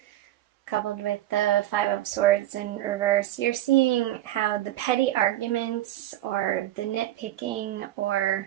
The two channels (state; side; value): quieter; left; 14.0 dB